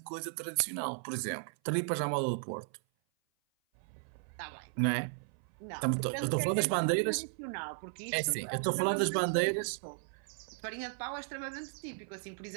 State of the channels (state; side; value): silent; left; 54 dB below the other